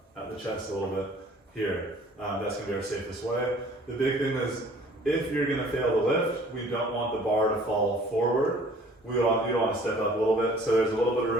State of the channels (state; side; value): normal; both; correlation 0.53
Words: at the chest a little bit here. That's going to be our safest way. The big thing is, if you're going to fail to lift, we don't want the bar to fall forward. You want to step up a little bit, so there's a little bit of